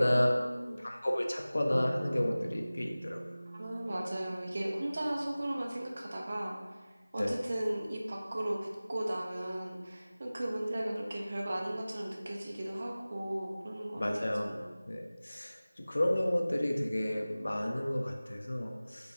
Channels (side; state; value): both; inverted; correlation -0.98